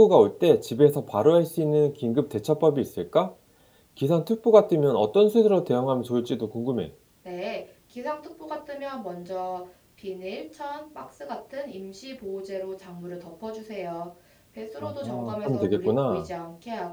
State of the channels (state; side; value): identical; both; correlation 1.00